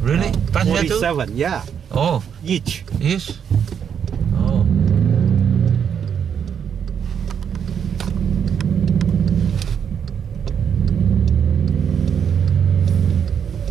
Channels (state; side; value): quieter; left; 7.8 dB